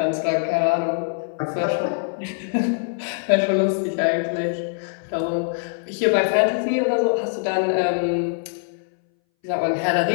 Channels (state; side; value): silent; right; 61 dB below the other